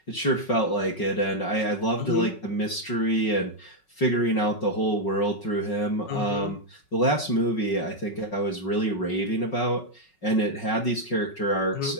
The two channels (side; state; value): right; late; 5.4 ms